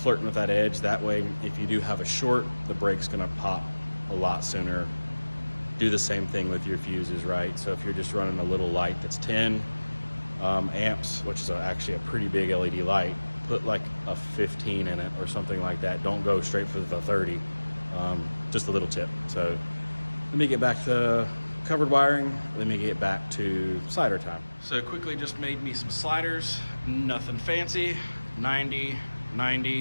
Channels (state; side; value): inverted; both; correlation -1.00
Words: flirting with that edge. That way, if you do have a short, the brake's gonna pop a lot sooner. Do the same thing with your fuses, right? So if you're just running a little light that's 10 amps, which is actually a pretty big LED light, put like a 15 in it or something like that. Don't go straight for the 30. Just a little tip. So let me get back to covered wiring. Let me get back to slider time. So quickly just made me some sliders, nothing fancy. 90,